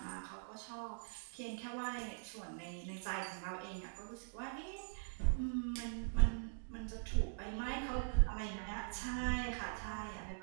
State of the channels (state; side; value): silent; left; digital silence